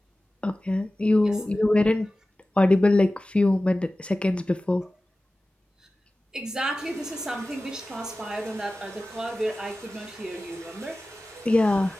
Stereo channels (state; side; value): normal; both; correlation 0.96